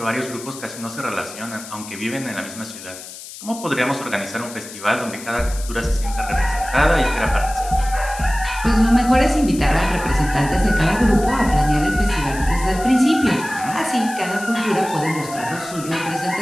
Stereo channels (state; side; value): noise; left; hiss, 14 dB below the sound